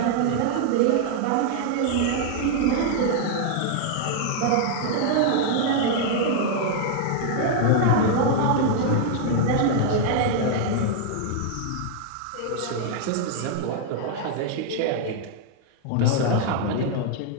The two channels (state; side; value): different; both; correlation -0.01